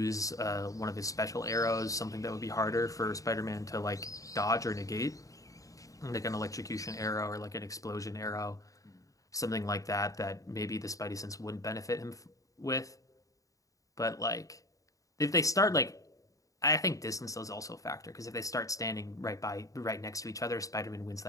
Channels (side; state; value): right; late; 0.16 ms